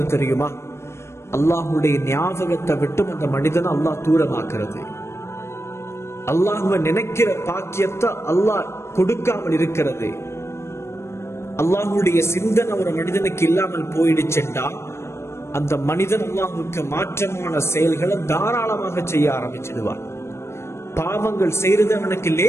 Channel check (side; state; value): right; late; 0.13 ms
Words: தெரியுமா? அல்லாஹுடைய ஞாபகத்தை விட்டும் அந்த மனிதனை அல்லாஹ் தூரமாக்குறது. அல்லாஹுவை நினைக்கிற பாக்கியத்தை அல்லாஹ் கொடுக்காமல் இருக்கிறது. அல்லாஹுடைய சிந்தனை ஒரு மனிதனுக்கு இல்லாமல் போயிடுச்சுட்டா அந்த மனிதன் அல்லாஹுக்கு மாற்றமான செயல்களை தாராளமாக செய்ய ஆரம்பிச்சிடுவான். பாவங்கள் செய்யறது அவனுக்கு